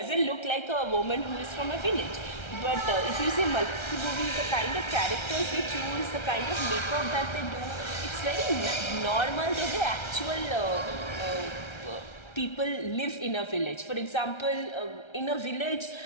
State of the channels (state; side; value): late; right; 1.3 ms